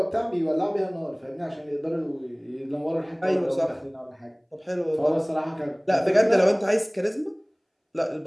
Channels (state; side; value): identical; both; correlation 1.00